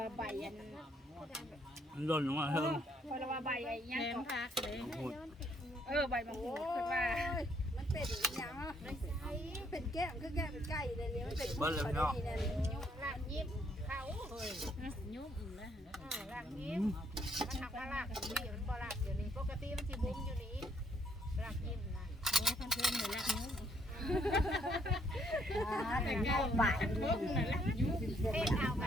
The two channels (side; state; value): both; normal; correlation 0.70